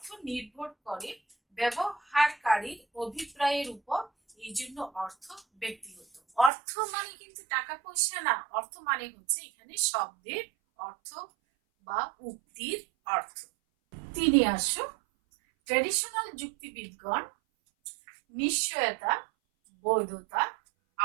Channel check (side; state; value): left; drops out; at 6.5 s